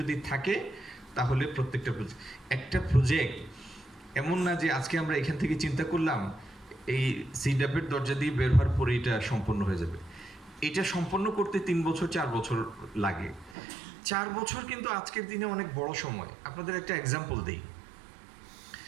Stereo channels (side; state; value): left; drops out; at 13.6 s